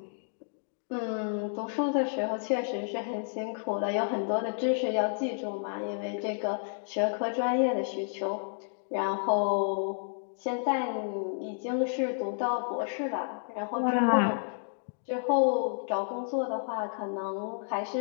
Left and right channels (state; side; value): silent; right; digital silence